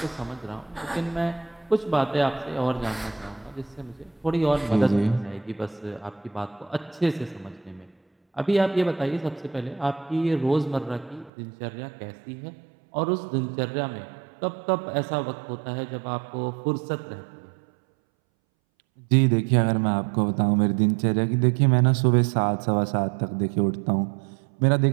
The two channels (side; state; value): left; drops out; at 11.3 s